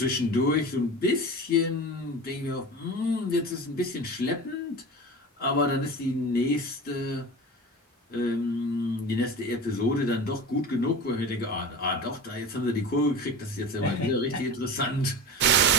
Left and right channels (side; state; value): both; normal; correlation 0.31